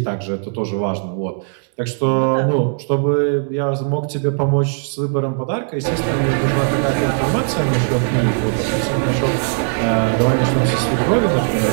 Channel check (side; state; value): left; silent; 67 dB below the other